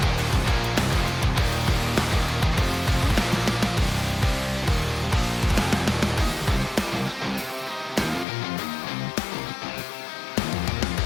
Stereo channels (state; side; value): drops out; right; at 8.2 s